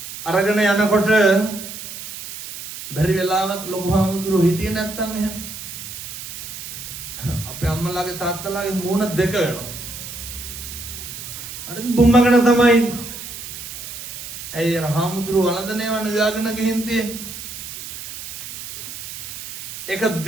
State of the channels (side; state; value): right; noise; hiss, 10 dB below the sound